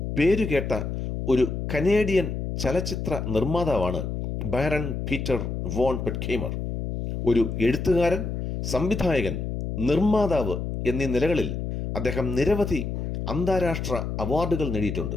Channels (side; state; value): left; noise; hum, 4 dB below the sound